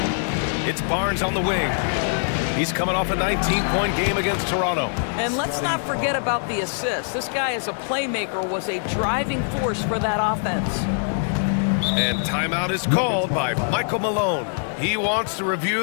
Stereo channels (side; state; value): right; silent; digital silence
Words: It's Barnes on the wing. He's coming off a 19-point game against Toronto. And let's not forget about the assist. This guy as a playmaker was a driving force for that offense. And timeout is called by Michael Malone. He wants to